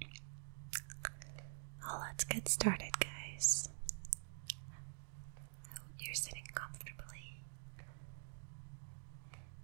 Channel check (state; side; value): silent; left; digital silence